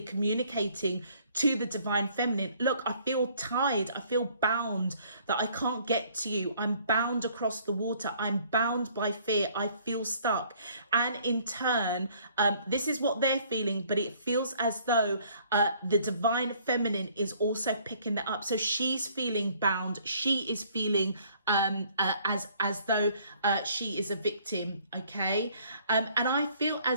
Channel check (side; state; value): both; inverted; correlation -0.60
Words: communicating to the divine feminine. Look, I feel tied, I feel bound, that I can't get to you. I'm bound across the water. I'm bound by fear. I feel stuck. And in turn, this is what they're feeling, but it feels as though the divine feminine is also picking that up. So she's feeling bound. She is feeling as though she is a victim, okay? And I feel